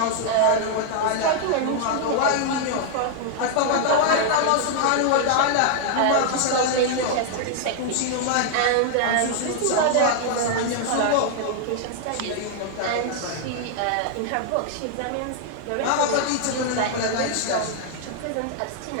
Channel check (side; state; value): both; different; correlation 0.00